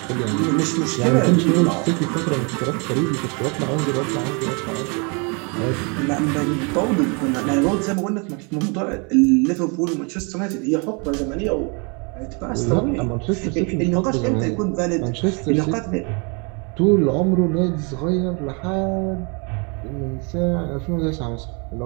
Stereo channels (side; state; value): left; quieter; 33.5 dB